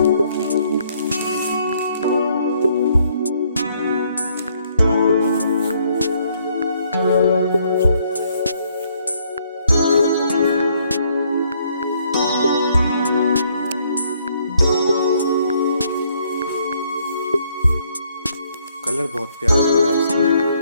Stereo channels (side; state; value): both; inverted; correlation -0.68